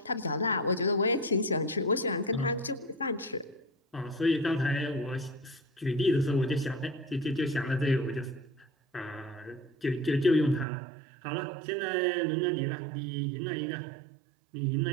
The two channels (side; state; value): left; drops out; at 10.7 s